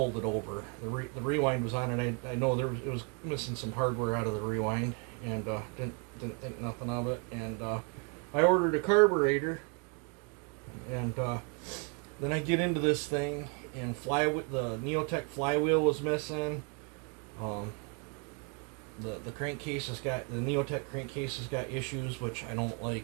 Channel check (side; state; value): left; quieter; 34.9 dB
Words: it over. The rewind was on it. I know it was missing some hardware out of the rewind, and didn't think nothing of it. And I ordered a carburetor, and then I get into this thing, and the Neotech flywheel was missing. The crankcase the Neotech crankcase has got issues, which I don't